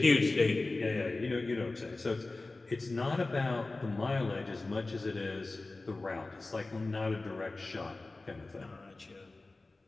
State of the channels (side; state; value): right; quieter; 3.2 dB